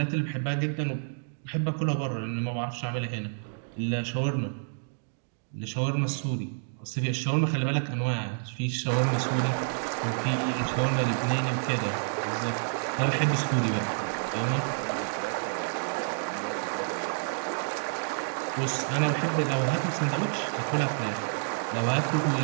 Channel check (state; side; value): silent; left; digital silence